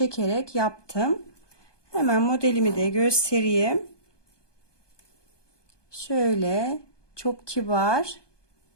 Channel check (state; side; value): late; right; 1.2 ms